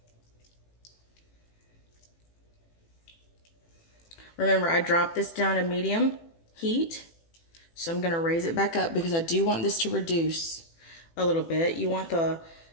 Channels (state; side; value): late; right; 18 ms